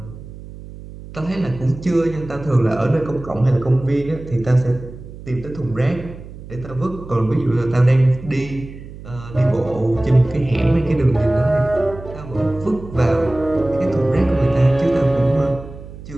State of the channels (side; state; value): right; noise; hum, 15 dB below the sound